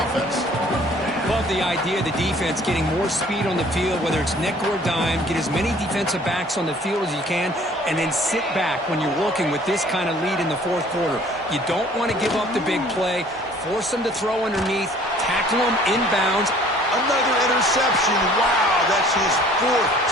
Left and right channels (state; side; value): normal; both; correlation 0.54